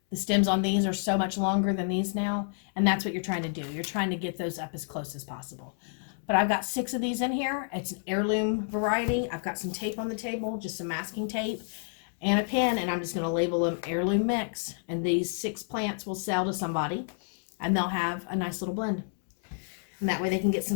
The stems on these are so much longer than these now. And that's what you're trying to do. You're trying to get those up as close as possible. But I've got 6 of these in here. It's an heirloom variety. I've got some tape on the table, just some masking tape and a pen, and I'm just going to label them heirloom mix. And these 6 plants will sell to somebody, and they'll have a nice little blend. And that way they can get some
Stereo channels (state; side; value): silent; right; 58 dB below the other